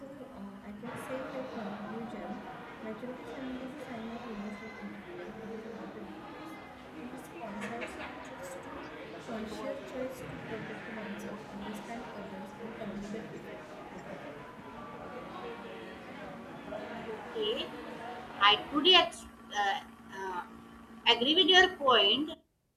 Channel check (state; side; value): identical; both; correlation 1.00